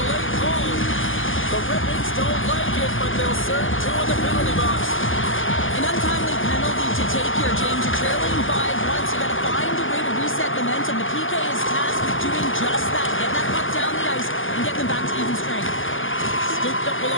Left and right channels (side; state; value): right; late; 0.58 ms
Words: call. The Red Wings don't like it, but they'll serve 2 in the penalty box. An untimely penalty to take here, James. You're trailing by once. You got to